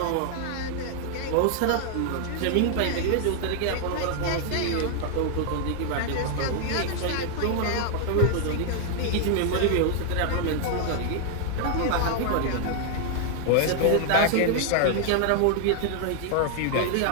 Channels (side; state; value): both; different; correlation 0.00